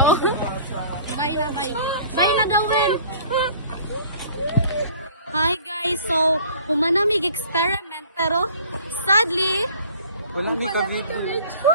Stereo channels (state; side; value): inverted; both; correlation -0.50